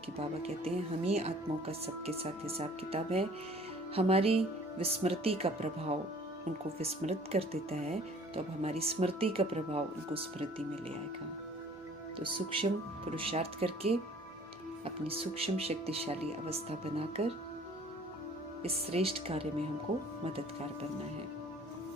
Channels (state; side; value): normal; both; correlation 0.52